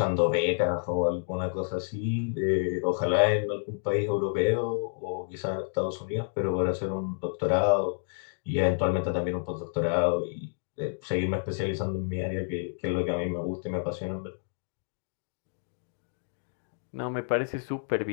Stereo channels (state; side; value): silent; right; digital silence